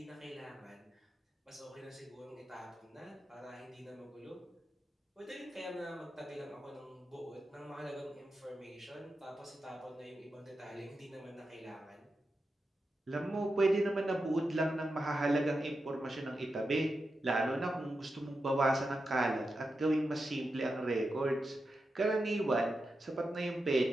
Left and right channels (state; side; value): normal; both; correlation 0.89